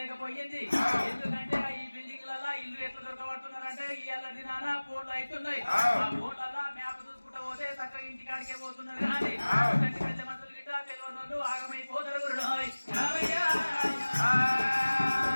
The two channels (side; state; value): both; inverted; correlation -1.00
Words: ఎందుకంటే ఈ బిల్డింగ్లలో ఇల్లు ఎట్లా దొరకబడుతున్నారంటే ఇయ్యాల దినాన ఫోన్లు అవుతున్నాయి ఆ ఫోన్లలో మ్యాప్ చూసుకుంటూ పోతే చక్కగా ఇంటికాడికే పోతున్నారు కానీ పెద్ద మనుషులు గిట్ట తెలియని వాళ్ళు ఆగమైపోతారు